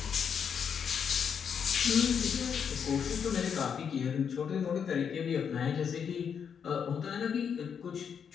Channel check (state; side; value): quieter; right; 7.3 dB